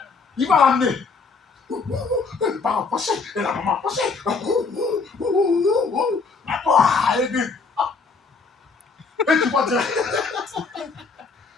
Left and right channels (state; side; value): quieter; right; 4.6 dB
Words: il va l'amener. Les parents passés, et la maman passée. Et